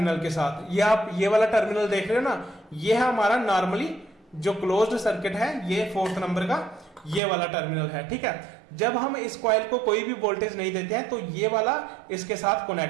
के साथ। ये आप ये वाला टर्मिनल देख रहे हो ना, ये है हमारा नॉर्मली जो क्लोज्ड सर्किट है, ये 4th नंबर का ये वाला टर्मिनल है, ठीक है। जब हम इस कॉइल को कोई भी वोल्टेज नहीं देते हैं तो ये वाला इसके साथ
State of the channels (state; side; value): drops out; left; at 7.2 s